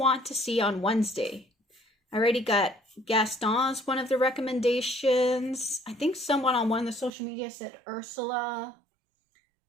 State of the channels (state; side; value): drops out; left; at 7.1 s